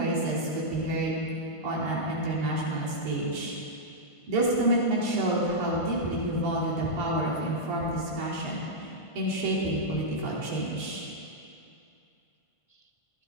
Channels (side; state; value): right; late; 1.5 ms